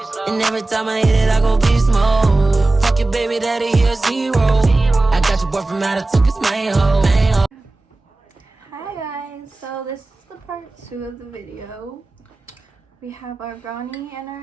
And every time I hit it, I go beast mode. Fuck your baby daddy, he a zero. I got your boy from out of took his main hoe. Hi guys, so this is the part 2 of the video. We have our brownie and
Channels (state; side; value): quieter; left; 3.1 dB